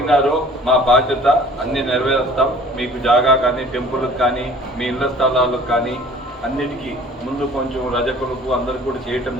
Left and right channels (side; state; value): both; normal; correlation 0.49